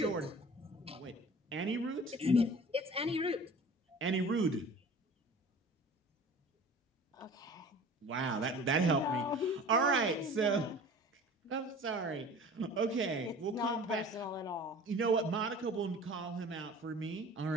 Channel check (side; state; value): both; normal; correlation 0.42